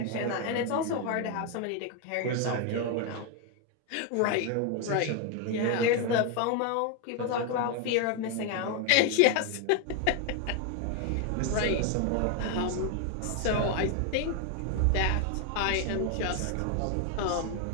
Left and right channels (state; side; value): different; both; correlation 0.01